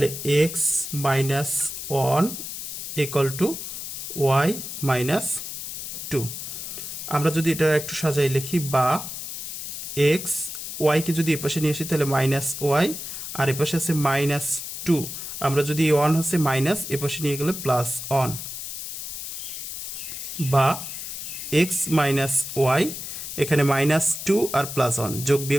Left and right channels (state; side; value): noise; left; hiss, 7 dB below the sound